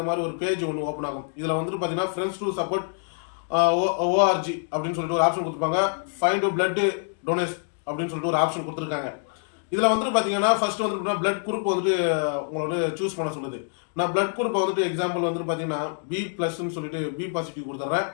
மாதிரி ஒரு பேஜ் ஒன்று ஓப்பன் ஆகும். இதில் வந்துட்டு பார்த்தீங்கன்னா ஃப்ரெண்ட்ஸ் டு சப்போர்ட் ஓஆர்ஜி அப்படின்னு சொல்லிட்டு ஒரு ஆப்ஷன் கொடுத்துருப்பாங்க. ஃபைண்ட் பிளட் டொனேட் அப்படின்னு சொல்லிட்டு ஒரு ஆப்ஷன் கொடுத்துருக்காங்க. இதில் வந்துட்டு பார்த்தீங்கன்னா ஃபர்ஸ்ட் வந்துட்டு பிளட் குரூப் வந்துட்டு உங்களை வந்து சூஸ் பண்ண சொல்லுது. நான் பிளட் குரூப்பை வந்துட்டு எக்ஸாம்பிள் வந்துட்டு பார்த்தீங்கன்னா B+ சொல்லிட்டு B பாசிட்டிவ் கொடுத்துட்றேன்.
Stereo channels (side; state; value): right; silent; 61 dB below the other